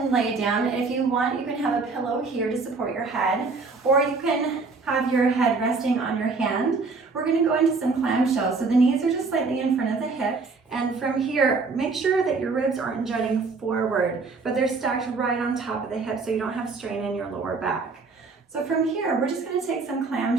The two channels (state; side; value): quieter; left; 4.2 dB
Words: lay down. If you want, you can have a pillow here to support your head, or you can have your head resting on your hand. We're going to go into some clamshells. So the knees are just slightly in front of the hips. And from here, make sure that your ribs aren't jutting forward, but they're stacked right on top of the hips so you don't have strain in your lower back. So from here, we're just going to take some